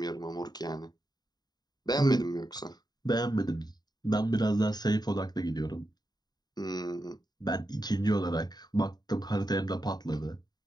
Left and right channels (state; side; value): late; right; 0.20 ms